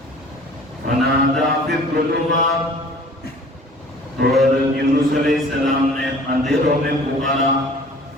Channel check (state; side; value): normal; both; correlation 0.48